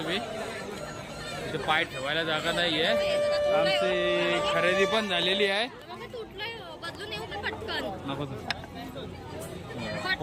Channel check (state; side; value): identical; both; correlation 1.00